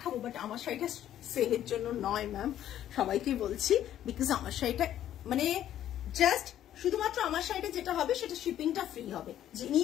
বাট আমার শাড়িটা সেলের জন্য নয় ম্যাম, সবাইকে বলছি, বিকজ আমার শাড়িটা মানে জাস্ট শুধুমাত্র আমার শাড়িটা যেটা হবে সেটা শিপিংটা ফ্রি হবে, যিনি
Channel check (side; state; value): right; quieter; 11.5 dB